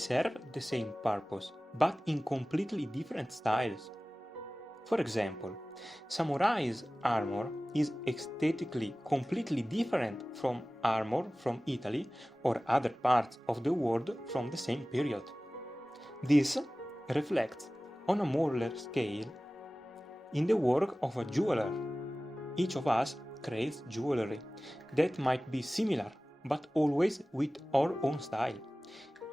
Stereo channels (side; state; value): both; normal; correlation 0.97